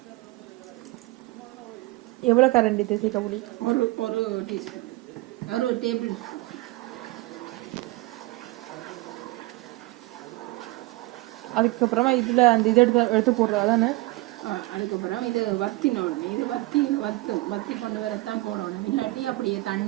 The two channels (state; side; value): quieter; left; 20.9 dB